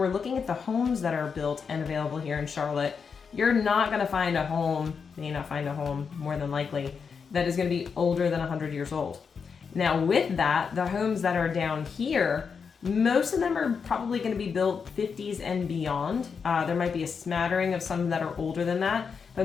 looking at the homes that are built and available here in Charlotte, you're not gonna find a home, may not find a home more than likely, that is gonna be older than 100 years old. Now, with that, the homes that are down here, most of them are probably going to be built 50s and beyond. There might be a smattering of some that are older than that,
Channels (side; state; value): right; quieter; 5.9 dB